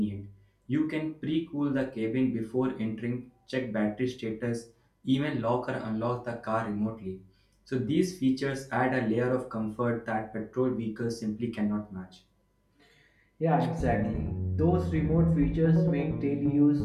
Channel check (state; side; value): identical; both; correlation 1.00